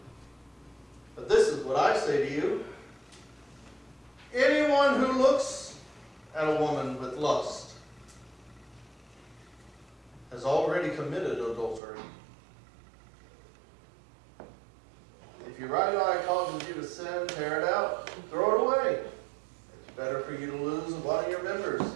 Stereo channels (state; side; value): drops out; left; at 11.8 s